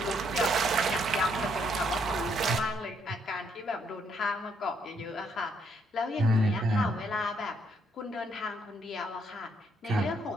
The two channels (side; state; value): both; normal; correlation 0.72